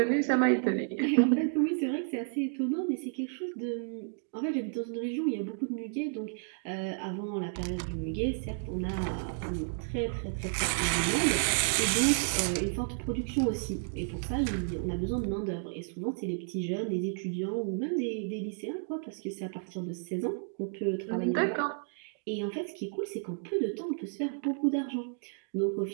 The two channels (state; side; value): silent; left; digital silence